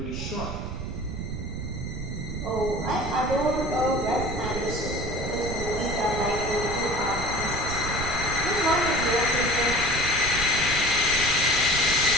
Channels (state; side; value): noise; right; rumble, 6 dB below the sound